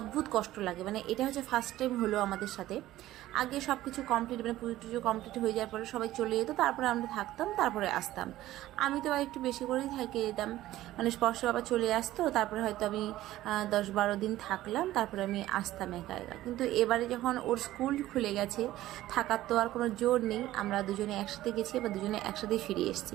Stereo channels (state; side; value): quieter; left; 15.1 dB